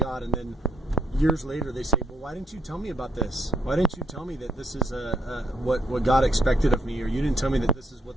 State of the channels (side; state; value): both; normal; correlation 0.68